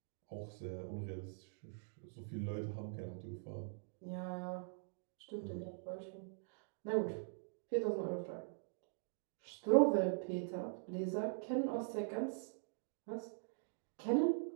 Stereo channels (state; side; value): silent; left; digital silence